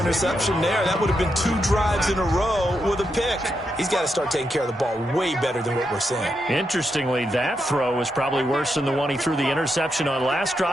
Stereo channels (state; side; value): normal; both; correlation 0.83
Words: there. That would have been 2 drives in a row with a pick. He's got to start taking care of the ball way better than what we're seeing. Interestingly, that throw was probably worse than the one he threw the interception on last